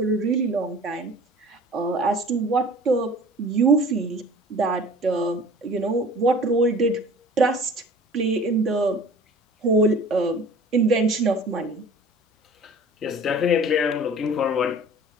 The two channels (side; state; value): both; normal; correlation 0.45